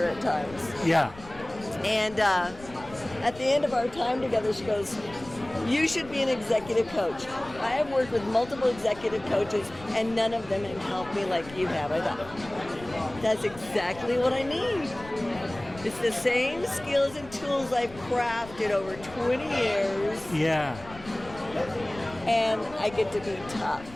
at times. Yeah. And at the end of our time together, she goes, you should be an executive coach. I have worked with multiple executive coaches, and none of them have helped me like you have. I thought, that's exactly what I need. It's the same skills and tools I've crafted over 20 years, Yeah. and I get to be tough.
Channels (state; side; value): noise; left; rumble, 18 dB below the sound